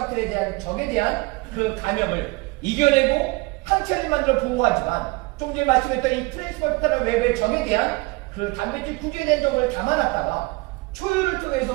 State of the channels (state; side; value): quieter; left; 24.3 dB